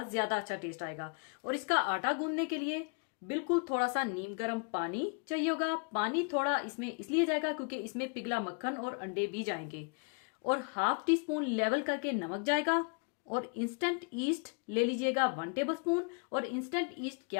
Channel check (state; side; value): quieter; right; 36.4 dB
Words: ज्यादा अच्छा टेस्ट आएगा। और इसका आटा गूंदने के लिए बिल्कुल थोड़ा सा नीम गर्म पानी चाहिए होगा। पानी थोड़ा इसमें इसलिए जाएगा क्योंकि इसमें पिघला मक्खन और अंडे भी जाएंगे। और हाफ टी स्पून लेवल करके नमक जाएगा। और इंस्टेंट ईस्ट ले लीजिएगा 1 टेबलस्पून। और इंस्टेंट ईस्ट